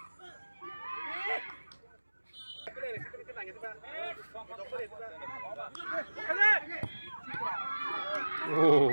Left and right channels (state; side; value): inverted; both; correlation -1.00